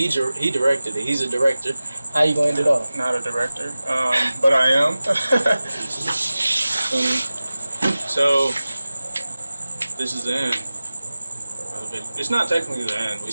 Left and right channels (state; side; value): inverted; both; correlation -0.96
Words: directed it. He's a director. How you gonna end it off? not a director, but I am. So this is the end. It's not technically the end. We